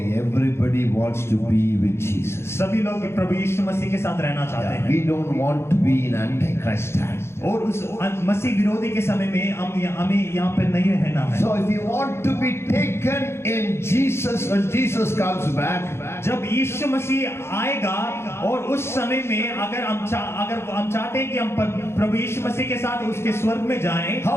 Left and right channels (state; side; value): late; right; 0.12 ms